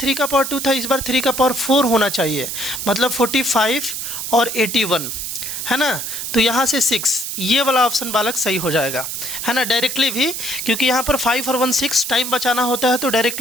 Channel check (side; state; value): right; noise; hiss, 5 dB below the sound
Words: का पावर 2 था, इस बार 3 का पावर 4 होना चाहिए, मतलब 45 और 81 है ना। तो यहाँ से 6, ये वाला ऑप्शन बालक सही हो जाएगा, है ना, डायरेक्टली भी, क्योंकि यहाँ पर 5 और 1 6 टाइम बचाना होता है, तो